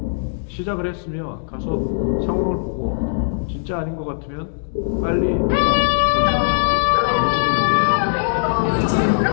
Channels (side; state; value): right; silent; digital silence